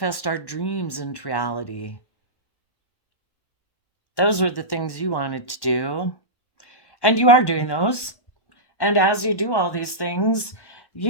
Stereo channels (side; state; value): right; late; 1.1 ms